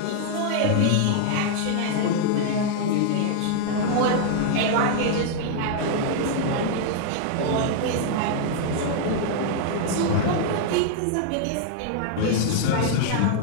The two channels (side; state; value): both; different; correlation 0.00